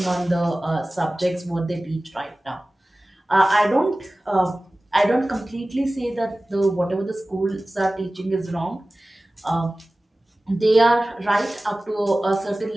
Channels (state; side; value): normal; both; correlation 0.97